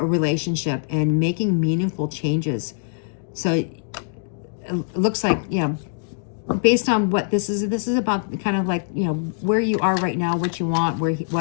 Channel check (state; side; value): silent; right; digital silence